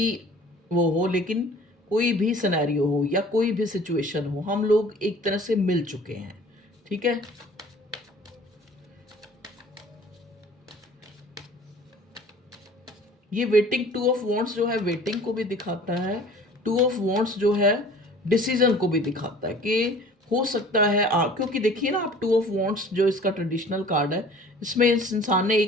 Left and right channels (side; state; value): both; normal; correlation 0.48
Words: वो हो, लेकिन कोई भी सिनेरियो हो या कोई भी सिचुएशन हो, हम लोग एक तरह से मिल चुके हैं। ठीक है, ये वेटिंग, टू ऑफ वॉन्ट्स जो है वेटिंग को भी दिखाता है। टू ऑफ वॉन्ट्स जो है डिसीजन को भी दिखाता है कि हो सकता है क्योंकि देखिए ना, आप टू ऑफ वॉन्ट्स जो इसका ट्रेडिशनल कार्ड है, इसमें इस इंसान ने